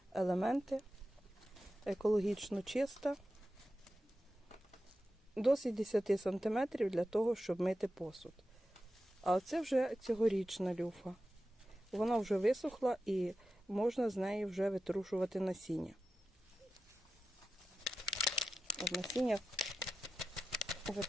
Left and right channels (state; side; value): normal; both; correlation 0.92